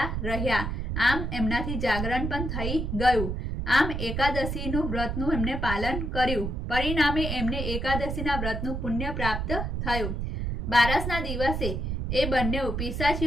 રહ્યા। આમ એમનાથી જાગરણ પણ થઈ ગયું। આમ એકાદશીનું વ્રતનું એમને પાલન કર્યું। પરિણામે એમને એકાદશીના વ્રતનું પુણ્ય પ્રાપ્ત થયું। બારસના દિવસે એ બંને પિશાચ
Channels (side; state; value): right; noise; rumble, 2 dB below the sound